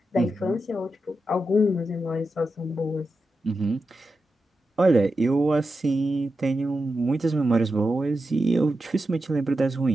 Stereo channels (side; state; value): both; normal; correlation 0.89